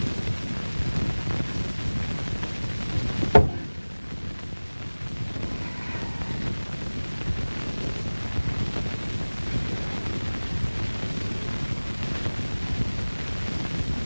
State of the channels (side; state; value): both; inverted; correlation -1.00